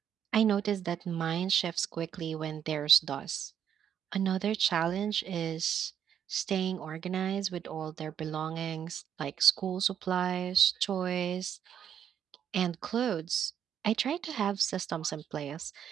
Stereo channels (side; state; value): left; quieter; 9.0 dB